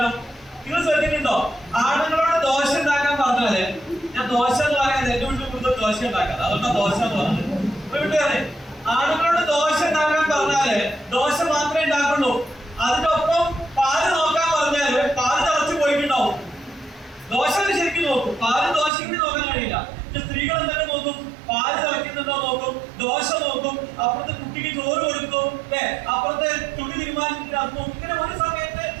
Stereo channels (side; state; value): left; drops out; at 18.9 s